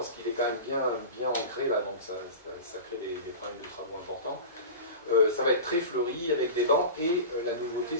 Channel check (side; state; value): both; inverted; correlation -0.31